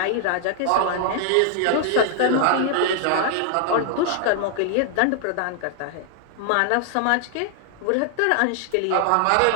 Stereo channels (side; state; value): both; different; correlation 0.00